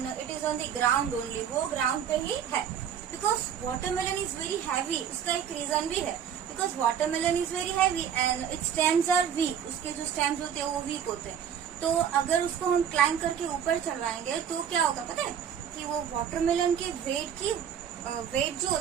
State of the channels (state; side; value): quieter; left; 8.5 dB